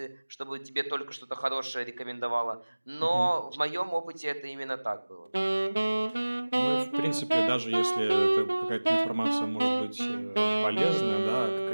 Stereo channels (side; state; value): both; inverted; correlation -1.00